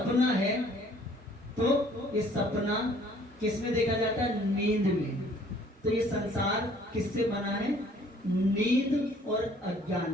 है, तो ये सपना किस में देखा जाता है? नींद में। तो ये संसार किससे बना है? नींद और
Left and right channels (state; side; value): normal; both; correlation 0.57